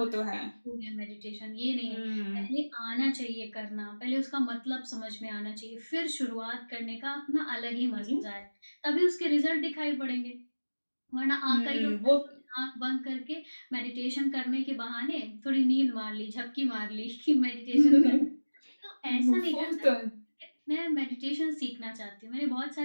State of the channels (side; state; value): both; inverted; correlation -1.00